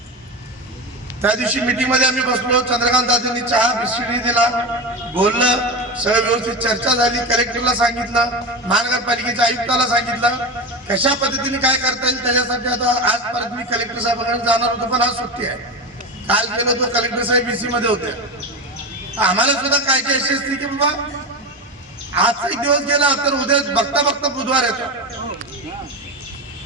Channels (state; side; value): normal; both; correlation 0.21